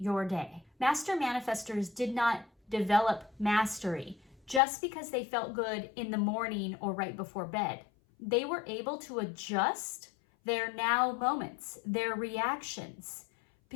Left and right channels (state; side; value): drops out; right; at 4.6 s